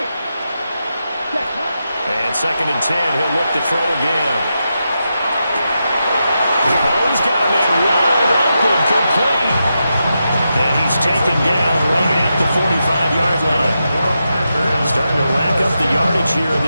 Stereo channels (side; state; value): both; inverted; correlation -0.87